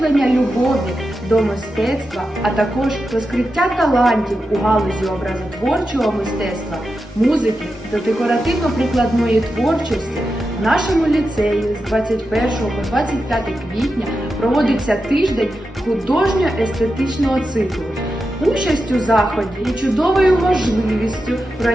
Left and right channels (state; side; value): normal; both; correlation 0.89